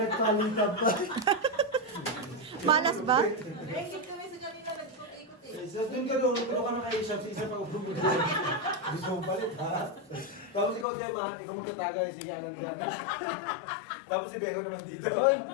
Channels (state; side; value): drops out; right; at 10.9 s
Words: pa. Malas ba? Sa doon ka doon, ikaw ka na kayo sa isa pag upro mo doon. Gusto mo palit, ha? Tapos ikaw, Diba, ikaw magtatagay siya ng gano'n. Tapos si Beko naman dito. Hoy!